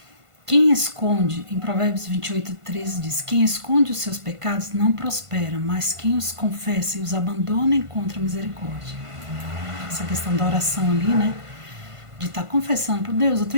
Quem esconde, em Provérbios 28:13 diz, quem esconde os seus pecados não prospera, mas quem os confessa e os abandona encontra misericórdia. Essa questão da oração ali, né? De estar confessando por Deus, eu tô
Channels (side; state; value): left; late; 1.5 ms